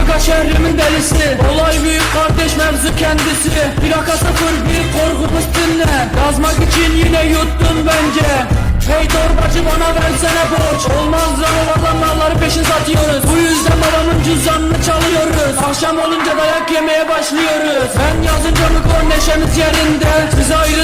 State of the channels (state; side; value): identical; both; correlation 1.00